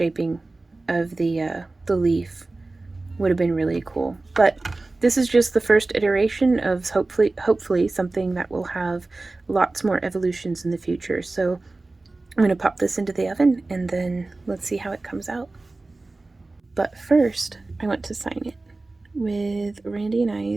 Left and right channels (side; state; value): left; quieter; 3.2 dB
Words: of the leaf would have been really cool. But this is just the first iteration of hopefully something that will have lots more evolutions in the future. So I'm going to pop this into the oven and then let's see how it comes out. But first, I want to sign it with Randy and